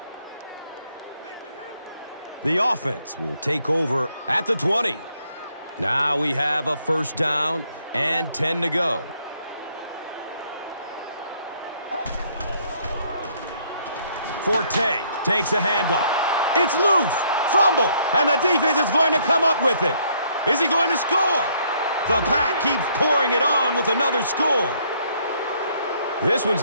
The offense will take over at the 20. Now we have a first down and 10 to go. Forte takes a handoff. It's loose. Fumble. And the defense is going to come up with it. Is he going to score? The Pack keeps pouring it on with another score. This one's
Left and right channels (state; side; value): inverted; both; correlation -0.67